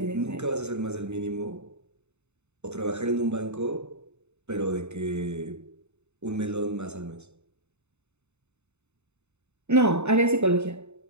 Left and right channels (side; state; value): left; late; 0.82 ms